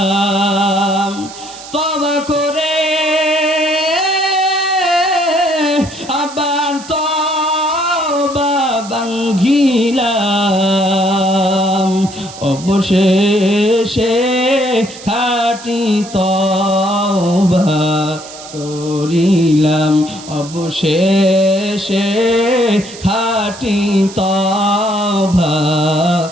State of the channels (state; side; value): noise; right; hiss, 16 dB below the sound